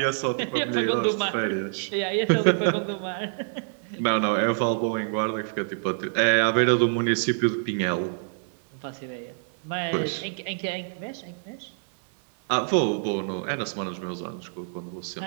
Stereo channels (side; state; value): left; silent; digital silence